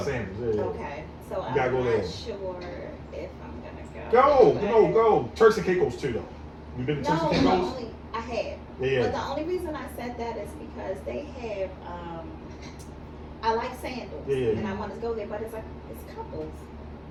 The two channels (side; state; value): both; identical; correlation 1.00